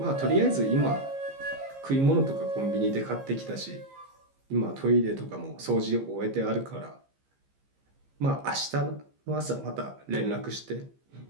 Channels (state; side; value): late; left; 15 ms